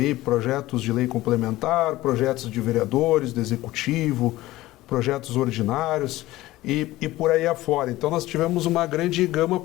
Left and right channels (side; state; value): right; quieter; 17.2 dB